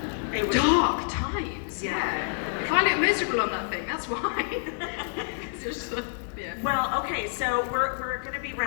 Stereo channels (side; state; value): right; silent; digital silence